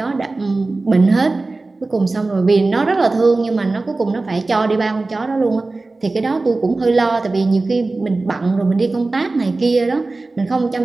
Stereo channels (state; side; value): quieter; left; 3.3 dB